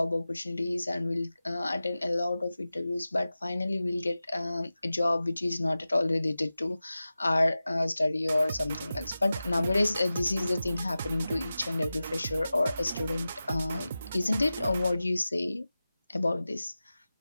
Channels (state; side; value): inverted; both; correlation -0.95